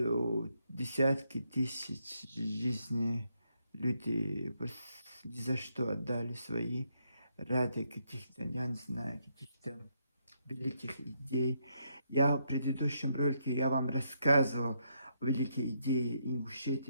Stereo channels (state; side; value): inverted; both; correlation -0.77